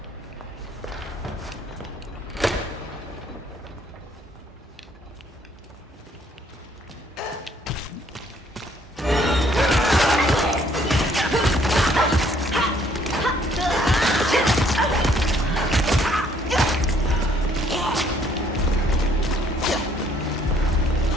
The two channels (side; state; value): both; normal; correlation 0.64